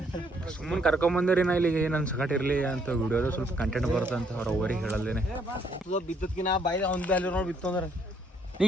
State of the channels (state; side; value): normal; both; correlation 0.69